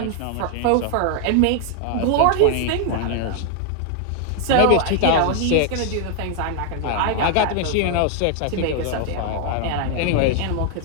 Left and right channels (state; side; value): different; both; correlation 0.00